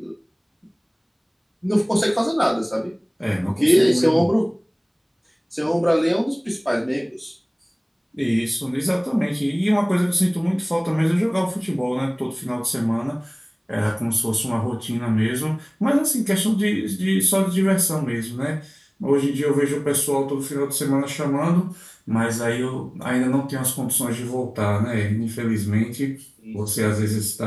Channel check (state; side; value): identical; both; correlation 1.00